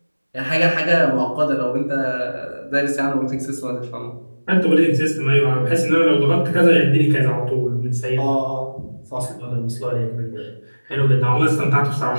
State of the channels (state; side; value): inverted; both; correlation -1.00